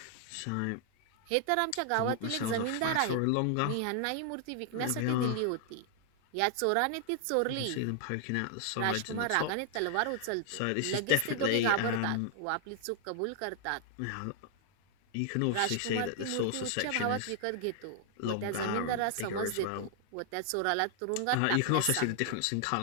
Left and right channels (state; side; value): different; both; correlation 0.00